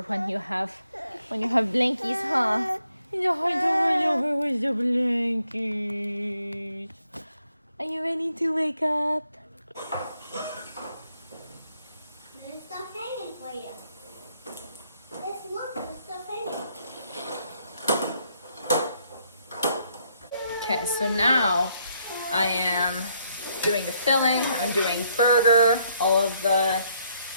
when you have blankies, huh? It's hard to roll over with the blankies. Are you ready to wake up? There's stuff hanging for you. Let's look, there's stuff hanging. Okay, so now I am doing the filling. I'm doing burger, all of the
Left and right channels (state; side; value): inverted; both; correlation -0.73